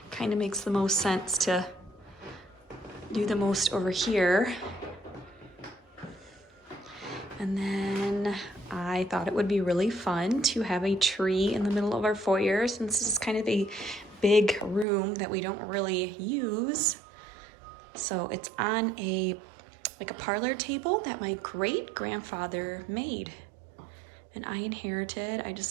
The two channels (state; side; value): drops out; left; at 14.9 s